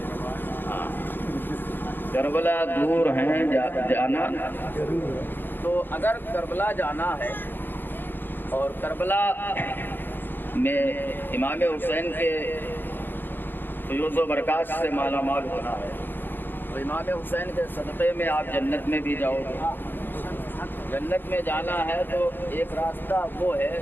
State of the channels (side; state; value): right; late; 0.096 ms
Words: کربلا دور ہیں جانا، تو اگر کربلا جانا ہے اور کربلا میں امام حسین کے فیوز و برکات سے مالا مال ہونا ہے تو امام حسین کے صدقے میں آپ جنت میں بھی جاؤ گے۔ جنت میں جانا ہے تو ایک راستہ وہ ہے